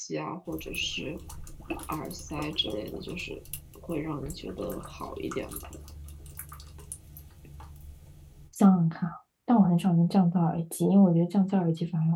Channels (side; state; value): both; identical; correlation 1.00